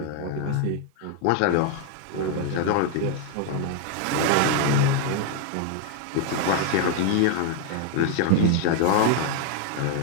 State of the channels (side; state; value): both; different; correlation 0.01